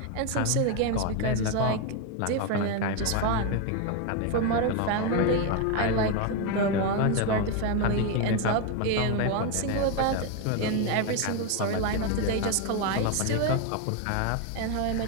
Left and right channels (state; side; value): different; both; correlation 0.02